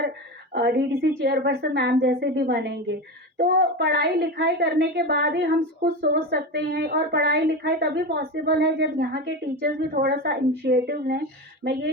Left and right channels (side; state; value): both; normal; correlation 0.22